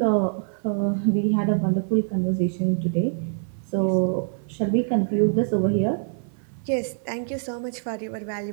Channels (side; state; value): left; silent; 58 dB below the other